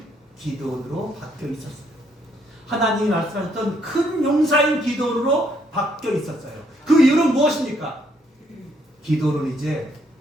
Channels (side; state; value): both; normal; correlation 0.71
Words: 기드온으로 바뀌어 있었어요. 하나님이 말씀하셨던 큰 용사인 기드온으로 바뀌어 있었어요. 그 이유는 무엇입니까? 기드온은 이제